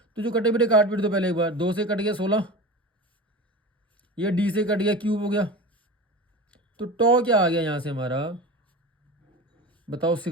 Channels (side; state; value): both; normal; correlation 0.31